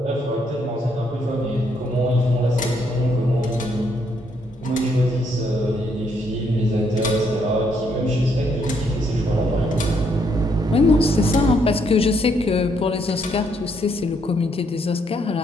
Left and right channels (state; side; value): normal; both; correlation 0.72